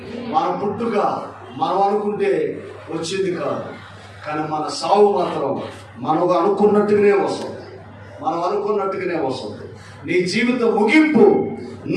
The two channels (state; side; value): identical; both; correlation 1.00